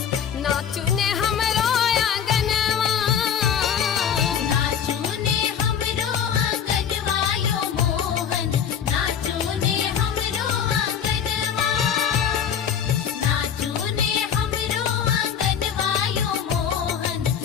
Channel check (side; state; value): right; quieter; 8.2 dB